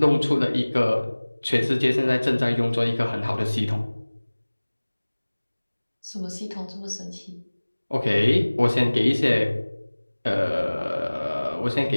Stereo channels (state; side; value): inverted; both; correlation -1.00